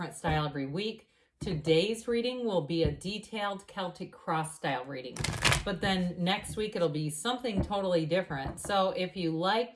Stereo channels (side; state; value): both; identical; correlation 1.00